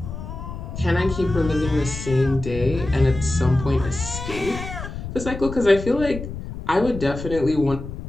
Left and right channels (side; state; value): left; noise; rumble, 9 dB below the sound